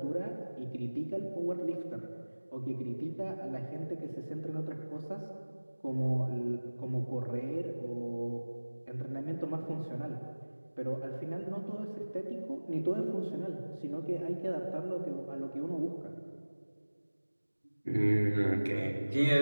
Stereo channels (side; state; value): both; inverted; correlation -1.00